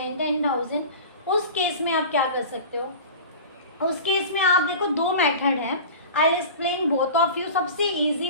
10,000। उस केस में आप क्या कर सकते हो, उस केस में आप देखो दो मेथड है, I explain both of you. सबसे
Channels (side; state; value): both; inverted; correlation -0.36